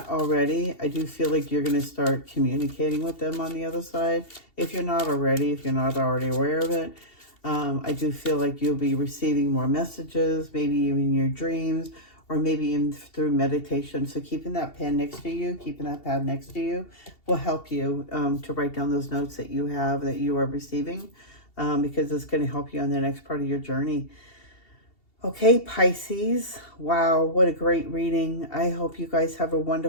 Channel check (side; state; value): right; late; 2.7 ms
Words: already, I do feel like you're going to start communicating with them on the other side. If you're not already aware of it, I do feel like you'll be receiving more messages, maybe even in your dreams, or maybe even through meditation. So keeping that pen next to you, keeping that pad next to you will help you to write down those notes that you have, that you are receiving, because it's going to help you on the next part of your journey. Okay, Pisces. Wow, what a great reading. I hope you guys have a